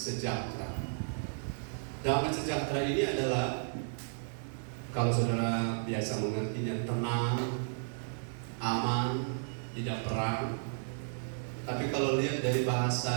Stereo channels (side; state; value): left; silent; digital silence